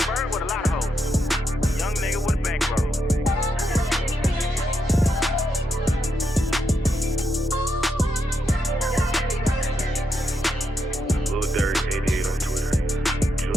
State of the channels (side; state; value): both; normal; correlation 0.82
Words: with a lot of hoes. Young nigga with a bankroll. Lil Dirt 88 on Twitter.